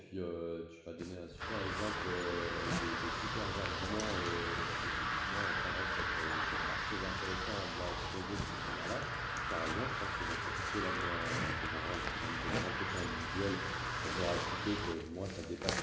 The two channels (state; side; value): identical; both; correlation 1.00